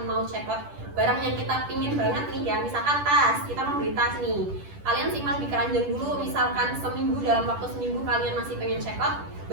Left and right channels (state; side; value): late; left; 10 ms